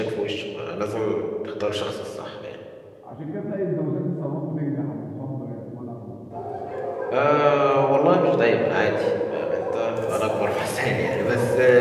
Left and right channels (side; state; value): both; identical; correlation 1.00